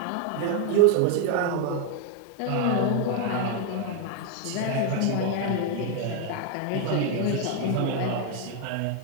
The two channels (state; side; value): different; both; correlation 0.01